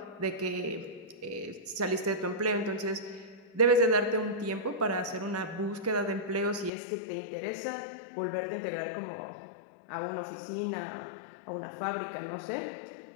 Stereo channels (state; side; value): drops out; right; at 6.7 s